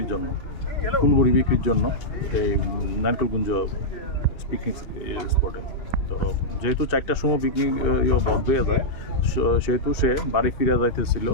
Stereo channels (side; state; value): right; late; 2.6 ms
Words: জন্য, ফুল বড়ি বিক্রির জন্য এই নারকেলকুঞ্জ পিকনিক স্পটে। তো যেহেতু 4টার সময় পিকনিক বন্ধ হয়ে যায়, সেহেতু সে বাড়ি ফিরে যাইতেছিল